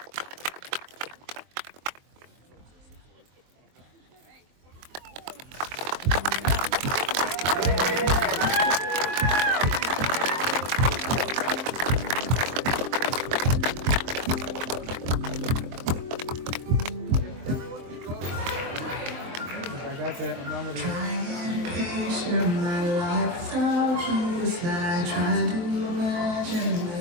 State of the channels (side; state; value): left; late; 23 ms